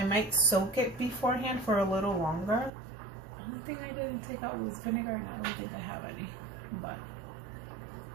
might soak it beforehand for a little longer. One thing I didn't take out was vinegar, and I don't think I have any, but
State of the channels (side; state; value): left; drops out; at 2.7 s